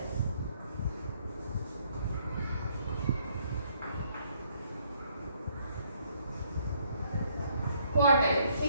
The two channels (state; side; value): inverted; both; correlation -0.68